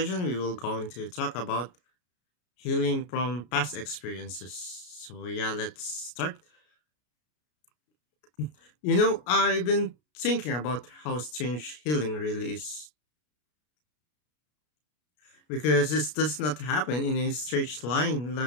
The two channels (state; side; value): late; right; 33 ms